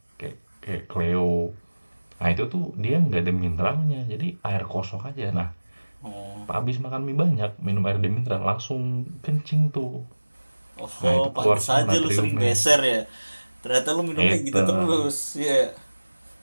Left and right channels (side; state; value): both; inverted; correlation -1.00